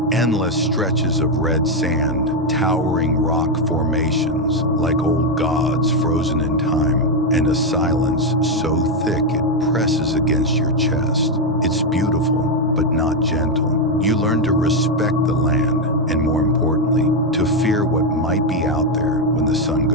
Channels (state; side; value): normal; both; correlation 0.04